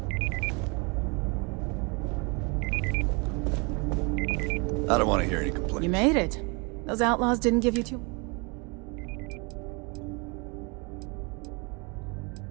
I don't want to hear any complaints. You made it. Those outlaws didn't give you too...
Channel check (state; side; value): quieter; left; 30.5 dB